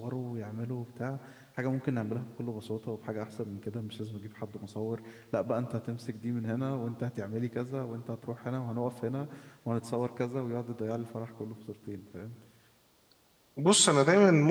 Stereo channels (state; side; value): identical; both; correlation 1.00